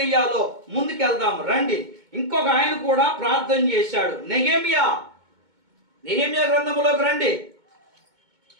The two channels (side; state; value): left; late; 2.2 ms